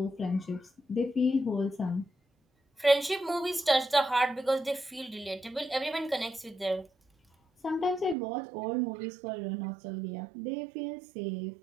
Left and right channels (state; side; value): drops out; left; at 8.2 s